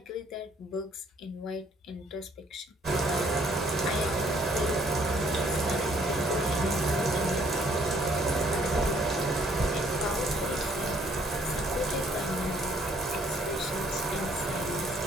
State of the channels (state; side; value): normal; both; correlation 0.63